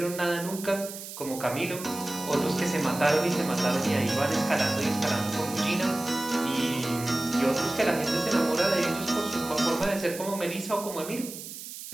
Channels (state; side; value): noise; right; hiss, 11 dB below the sound